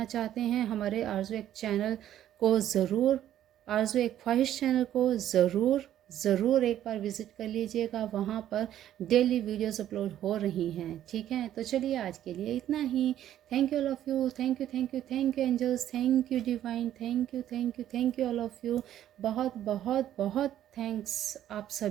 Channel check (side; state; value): left; quieter; 11.6 dB